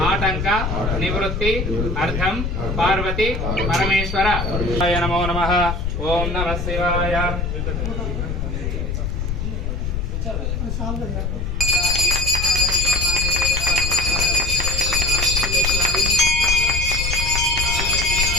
ఆటంక నివృత్తి అర్థం పార్వతి పరమేశ్వర నమో నమః. ఓం నమః శివాయ.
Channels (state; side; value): noise; left; rumble, 2 dB below the sound